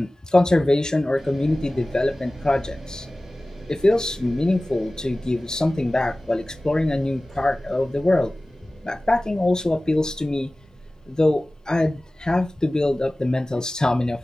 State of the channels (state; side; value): normal; both; correlation 0.98